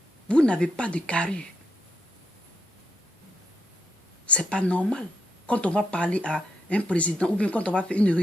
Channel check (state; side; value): normal; both; correlation 0.80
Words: Vous n'avez pas de carrure. C'est pas normal. Quand on va parler à un président, ou bien quand on va faire une